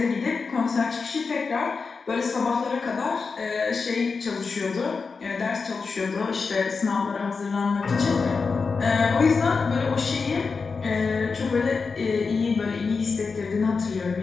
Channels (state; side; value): quieter; right; 4.8 dB